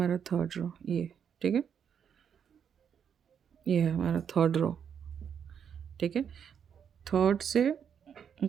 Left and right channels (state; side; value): quieter; left; 7.8 dB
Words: थर्ड रो, ये ठीक है, ये है हमारा थर्ड रो। ठीक है, थर्ड से